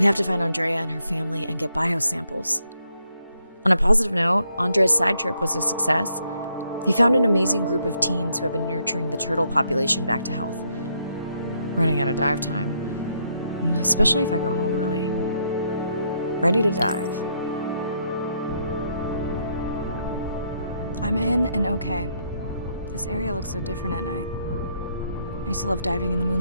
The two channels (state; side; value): inverted; both; correlation -0.75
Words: have to find Andrea and her family and get biosamples. On a positive note, Andrea's side trip was a success. He found an amazing group of teens who have been nurturing the turtle population back to health. Running out of dive time, especially if I go home early. Ready to dive. I'm in and okay. This area looks so different at night. I used to love diving in the